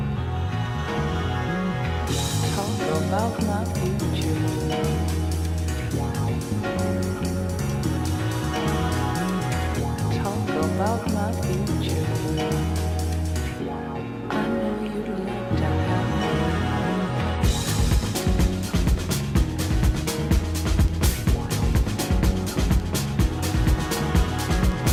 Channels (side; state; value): both; identical; correlation 1.00